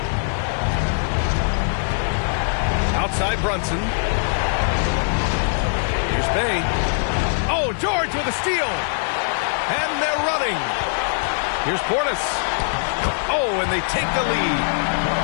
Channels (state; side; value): silent; right; digital silence